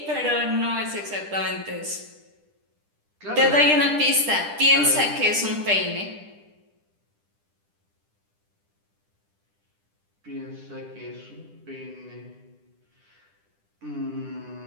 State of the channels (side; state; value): left; late; 10 ms